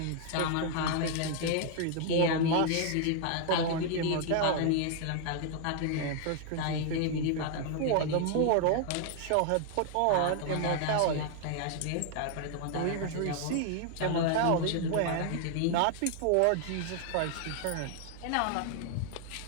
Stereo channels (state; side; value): different; both; correlation 0.00